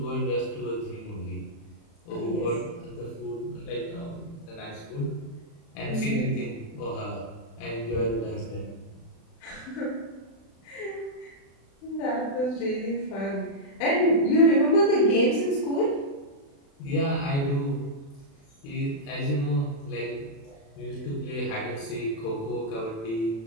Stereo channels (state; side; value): late; right; 36 ms